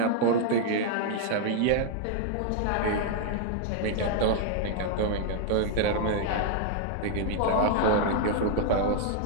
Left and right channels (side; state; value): both; different; correlation 0.00